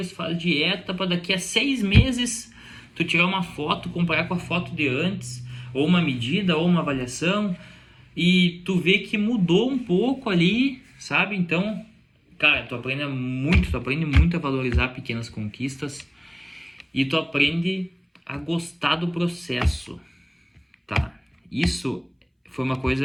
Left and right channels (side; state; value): both; identical; correlation 1.00